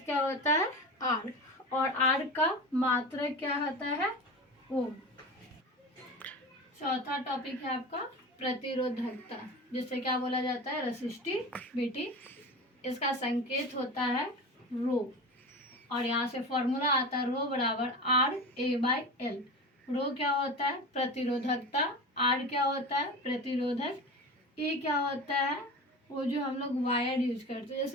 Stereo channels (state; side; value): normal; both; correlation 0.30